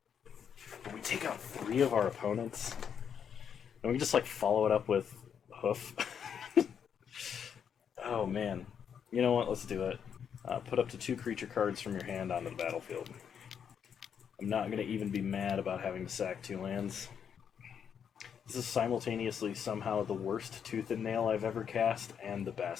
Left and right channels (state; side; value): quieter; right; 7.8 dB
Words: But we take out 3 of our opponents. And we can just like follow it up with Hoof. Oh man. You know what? Let's do it. Put up to 2 creature cards from your hand onto the battlefield. I'm not going to even be mad about having to sack 2 lands. This is simultaneously somehow the worst Tooth and Nail I've ever cast, and the